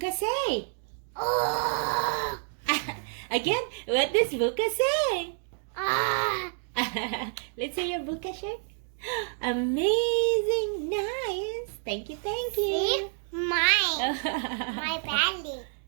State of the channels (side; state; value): left; silent; 55 dB below the other